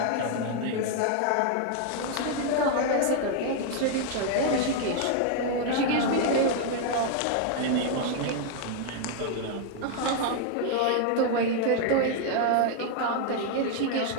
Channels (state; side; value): different; both; correlation 0.00